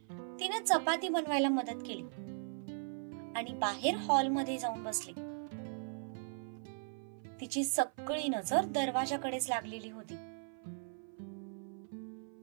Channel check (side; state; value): left; silent; 52 dB below the other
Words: तिने चपाती बनवायला मदत केली आणि बाहेर हॉलमध्ये जाऊन बसली. तिची सगळी नजर दरवाजाकडेच लागलेली होती.